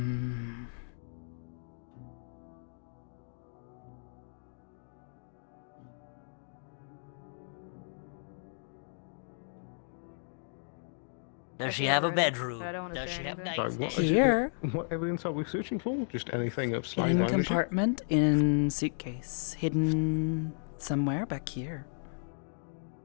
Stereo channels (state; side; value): silent; right; digital silence